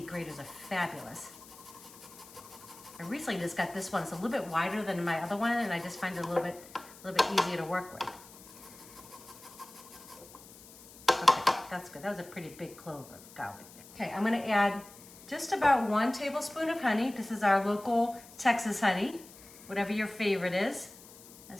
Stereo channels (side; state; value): left; noise; hiss, 19 dB below the sound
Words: graters are fabulous. I recently just got this one. It's a little bit wider than my other one, and I just find it a little bit easier to work with. Okay, that's good. That was a pretty big clove of garlic. Okay, I'm gonna add just about 1 tablespoon of honey. This is our local Texas honey, whatever your favorite is.